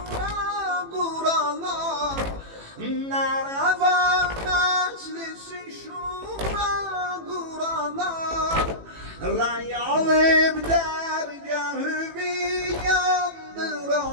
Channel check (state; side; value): late; left; 18 ms